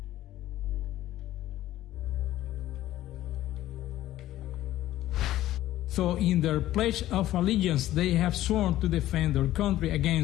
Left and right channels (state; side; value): quieter; right; 14.4 dB